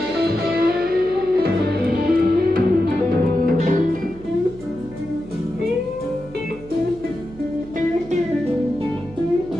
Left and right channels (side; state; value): right; noise; hum, 19 dB below the sound